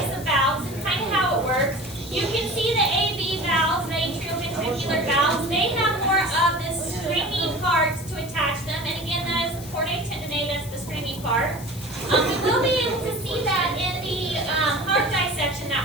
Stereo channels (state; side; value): noise; left; hiss, 16 dB below the sound